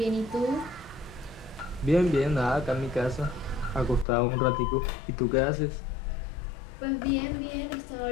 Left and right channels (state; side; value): drops out; right; at 4.0 s